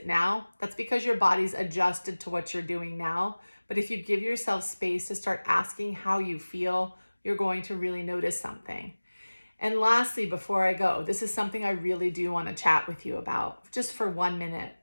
now. That's because your body's adjusted to what you're doing now. But if you give yourself space to start asking how you feel, you're going to really notice something. And lastly, before I go, this is something I really do want to chat with you about just for 1 minute.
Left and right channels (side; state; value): both; inverted; correlation -1.00